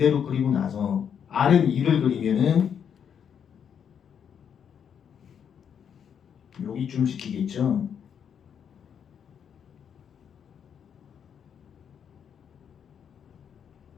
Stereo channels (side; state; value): right; quieter; 7.9 dB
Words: 그리고 나서 R은 2를 그리면은 여기쯤 시키겠죠.